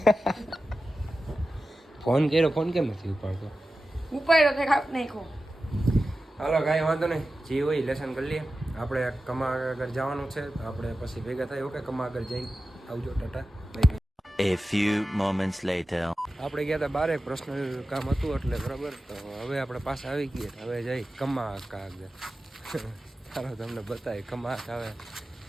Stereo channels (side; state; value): both; normal; correlation 0.93